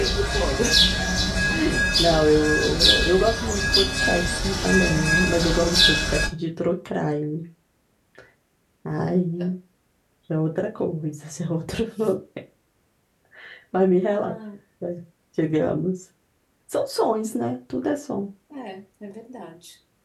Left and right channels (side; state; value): both; identical; correlation 1.00